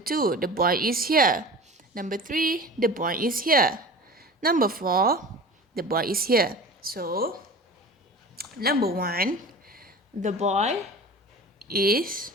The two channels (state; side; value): normal; both; correlation 0.37